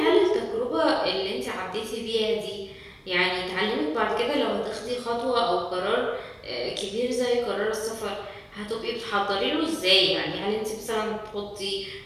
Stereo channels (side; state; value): both; identical; correlation 1.00